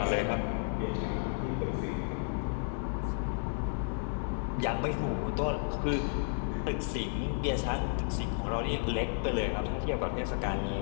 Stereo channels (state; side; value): silent; right; digital silence